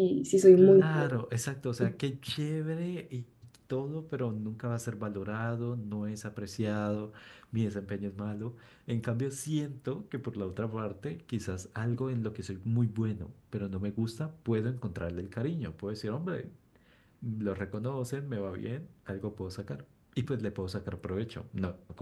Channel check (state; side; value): identical; both; correlation 1.00